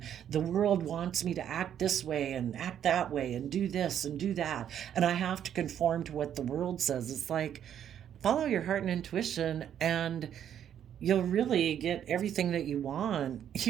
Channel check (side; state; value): left; quieter; 9.7 dB